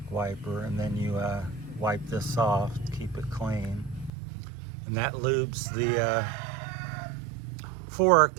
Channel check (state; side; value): drops out; left; at 4.1 s